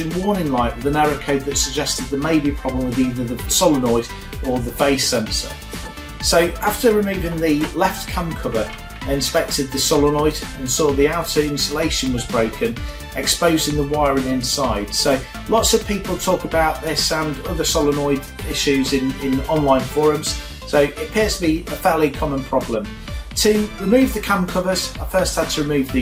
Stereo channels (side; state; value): both; identical; correlation 1.00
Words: warning light with an error code that suggested there may be a problem with either the solenoid or the phase sensor. So after removing the left cam cover, I inspected the solenoid and saw the outer insulation was broken, exposing the wiring inside. So lots of people talk about this and other solenoid issues in online forums, so it appears to be a fairly common problem. To remove the cam covers, I first had to remove